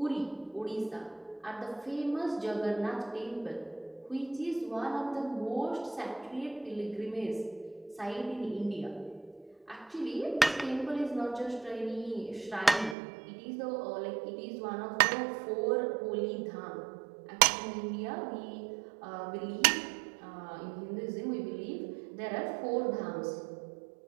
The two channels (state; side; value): drops out; left; at 13.0 s